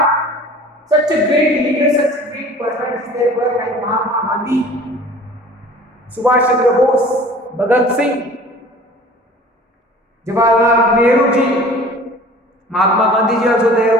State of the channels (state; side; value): normal; both; correlation 0.45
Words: such a great leader, such a great personality there were like Mahatma Gandhi, Subhash Chandra Bose, Bhagat Singh, Jawaharlal Nehru ji, Mahatma Gandhi ji also